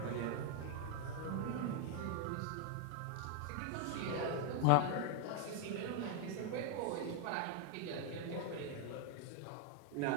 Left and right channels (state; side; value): different; both; correlation 0.01